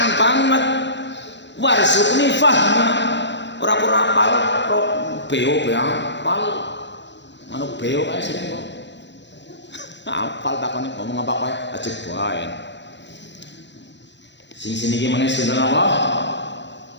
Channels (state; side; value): late; right; 0.52 ms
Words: banget. Warzuqni fahma. Ora apal beo apal. Manuk beo kae sering kok. Apal takone ngomong apa kae ajeg bae. Sing sini iki meneh sinten apa?